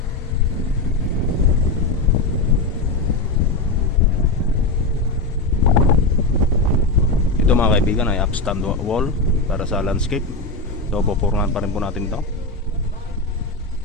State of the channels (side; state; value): right; quieter; 3.2 dB